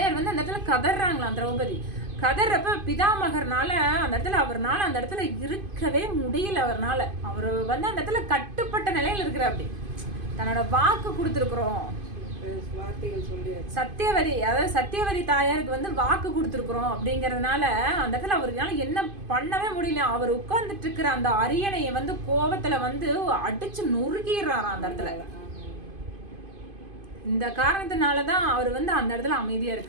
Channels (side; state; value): left; late; 2.5 ms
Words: வந்து அந்த இடத்துல கதறாங்களாம். திரௌபதி கதறப்ப பிதாமகர்னால அந்த இடத்துல இருக்கவே முடியல. அவர் வந்து அந்த இடத்துல கட்டுப்பட்ட நிலையில இருக்கிற அப்படி தன்னோட வாக்கு கொடுத்துருக்குறோம். சத்தியவதி தாயாருக்கு வந்து வாக்கு கொடுத்துருக்குறோம் அப்படிங்கறதுனால அந்த இடத்துல அவருனால என்ன பண்ணவே முடியல. அவர் உட்கார்ந்துட்டு இருக்கிற அந்த அரியணையை வந்து கோபத்துல வந்து அடிச்சு நொறுக்கிடுறாராம் அந்த இடத்துல. இந்த காரணத்தினாலதான் அவர் வந்து அந்த இடத்துல அமைதியா